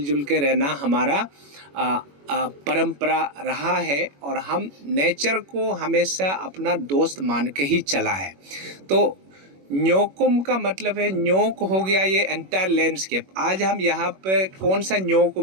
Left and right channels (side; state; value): left; late; 21 ms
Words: के रहना हमारा परंपरा रहा है और हम नेचर को हमेशा अपना दोस्त मान के ही चला है। तो न्योकुम का मतलब है, न्योक हो गया ये एंटायर लैंडस्केप। आज हम यहाँ पे कौन सा न्योक